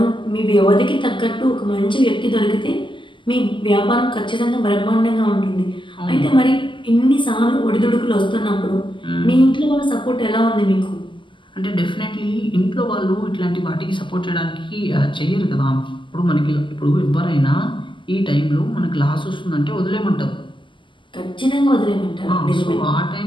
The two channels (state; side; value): late; right; 0.24 ms